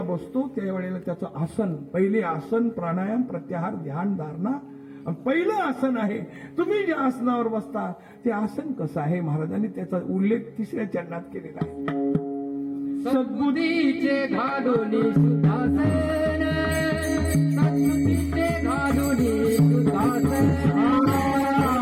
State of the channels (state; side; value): identical; both; correlation 1.00